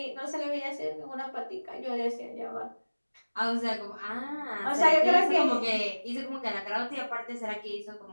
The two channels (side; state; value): both; inverted; correlation -1.00